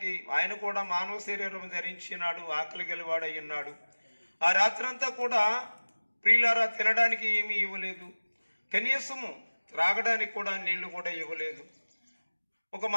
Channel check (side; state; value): both; inverted; correlation -1.00